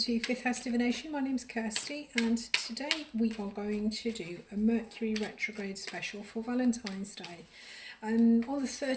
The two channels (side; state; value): both; identical; correlation 1.00